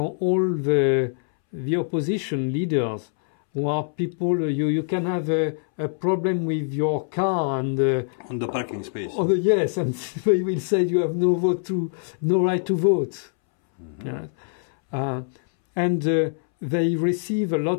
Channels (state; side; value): silent; right; 63 dB below the other